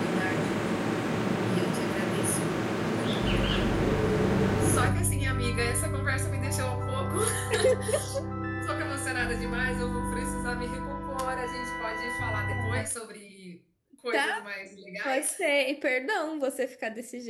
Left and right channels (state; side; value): identical; both; correlation 1.00